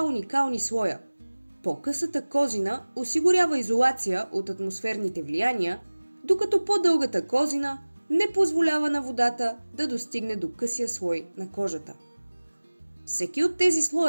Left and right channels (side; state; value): both; inverted; correlation -1.00